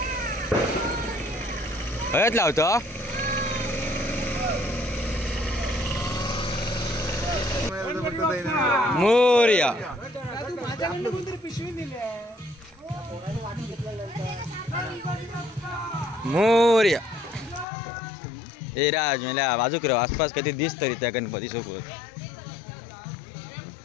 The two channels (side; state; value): right; drops out; at 17.7 s